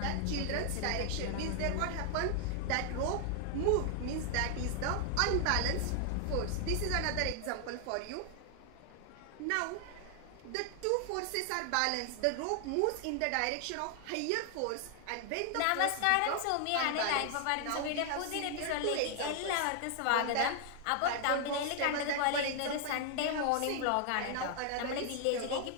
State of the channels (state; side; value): different; both; correlation 0.00